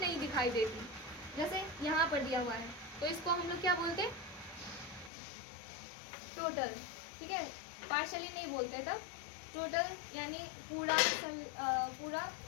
दिखाई देती, जैसे यहाँ पर दिया हुआ है, तो इसको हम लोग क्या बोलते हैं, टोटल, ठीक है, पार्शियली नहीं बोलते तब, टोटल यानी पूरा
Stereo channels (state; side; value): drops out; right; at 5.1 s